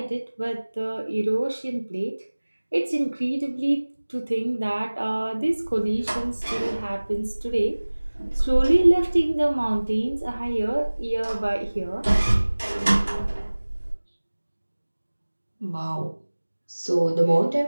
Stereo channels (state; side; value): inverted; both; correlation -1.00